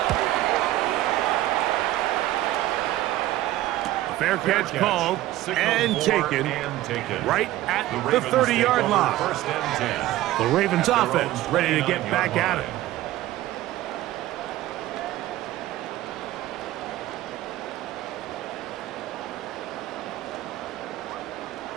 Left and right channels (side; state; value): left; quieter; 15.3 dB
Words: Fair catch called and taken right at the 30-yard line. The Ravens offense ready to get back at it.